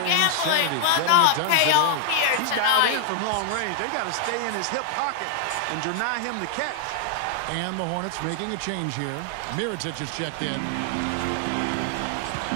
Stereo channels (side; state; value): both; different; correlation 0.00